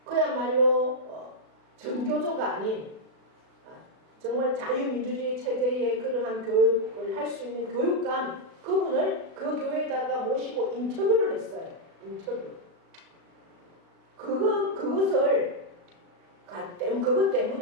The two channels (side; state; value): left; late; 36 ms